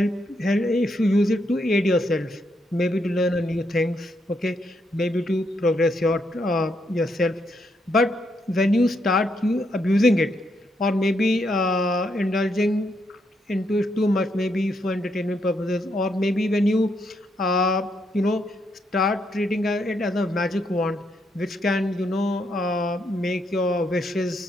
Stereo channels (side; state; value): both; normal; correlation 0.78